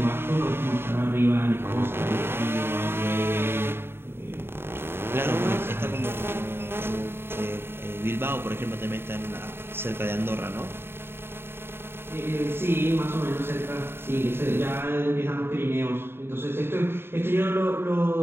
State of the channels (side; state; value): left; late; 0.11 ms